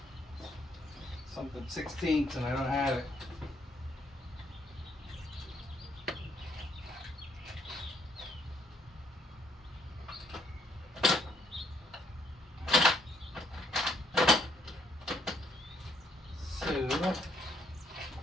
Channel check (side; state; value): both; normal; correlation 0.70